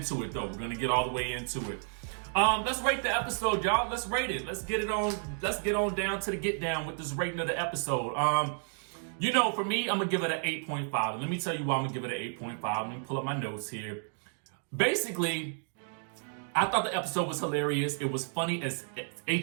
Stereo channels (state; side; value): silent; left; 57 dB below the other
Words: it though. We're going to get all the way into it. Let's rate the episode, y'all. Let's rate it. Let's get on down to the get down with this rating of the episode. For me, I'm going to give it an 8.5. And let me tell you why I'm going to give it an 8.5. Let me pull up my notes here. Basically, I thought the episode was hilarious. It was funny as